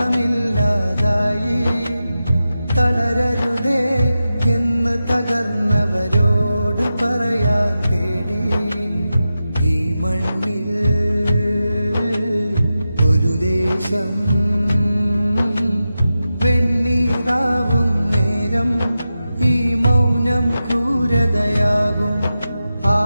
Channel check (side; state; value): both; inverted; correlation -0.92